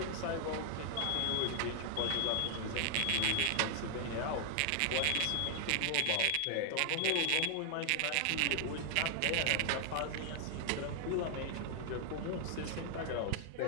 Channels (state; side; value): different; both; correlation 0.00